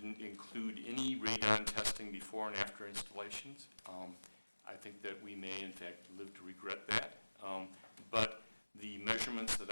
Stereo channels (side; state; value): both; inverted; correlation -1.00